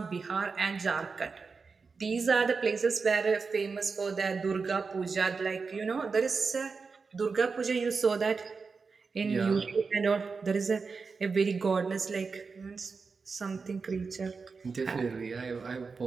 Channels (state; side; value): quieter; left; 4.8 dB